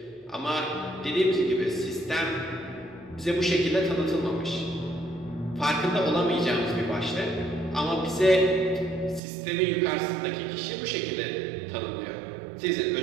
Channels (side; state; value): left; drops out; at 9.2 s